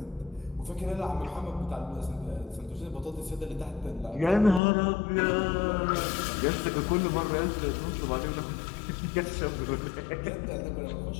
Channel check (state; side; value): drops out; right; at 4.6 s